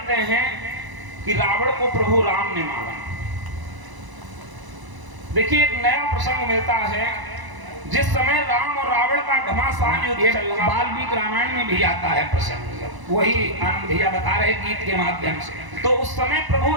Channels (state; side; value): late; left; 1.0 ms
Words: हैं कि रावण को प्रभु राम ने मारा। देखिए एक नया प्रसंग मिलता है। जिस समय राम और रावण का घमासान युद्ध चल रहा, वाल्मीकि रामायण में भी आता है प्रसंग, वही आनंद भैया बता रहे गीत के माध्यम से। तो उस समय प्रभु